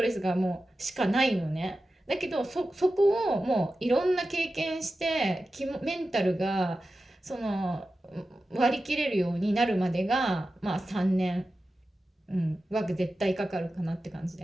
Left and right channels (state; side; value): normal; both; correlation 0.93